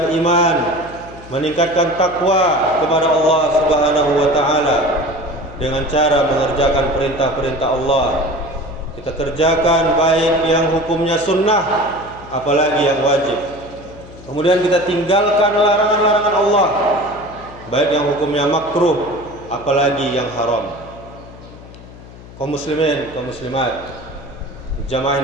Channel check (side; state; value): left; noise; hum, 18 dB below the sound